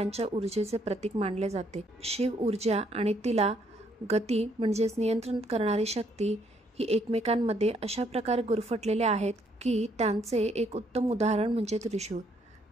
ऊर्जेचे प्रतीक मानले जाते। शिव ऊर्जा आणि तिला गती म्हणजेच नियंत्रण करणारी शक्ती ही एकमेकांमध्ये अशा प्रकारे गुरफटलेले आहेत की त्यांचे एक उत्तम उदाहरण म्हणजे त्रिशूळ।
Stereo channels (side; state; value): both; normal; correlation 0.69